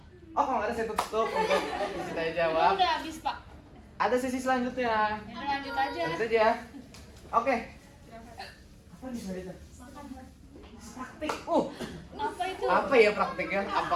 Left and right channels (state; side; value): identical; both; correlation 1.00